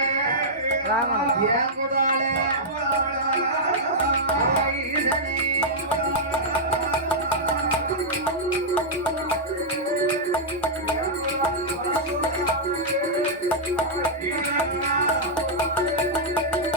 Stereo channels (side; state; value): both; normal; correlation -0.08